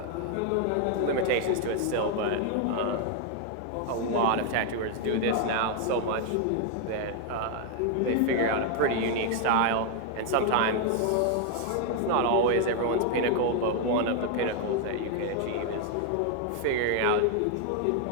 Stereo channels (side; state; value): both; different; correlation 0.00